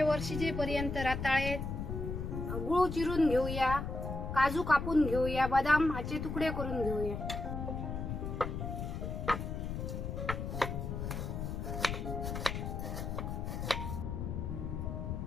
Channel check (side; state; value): left; noise; rumble, 4 dB below the sound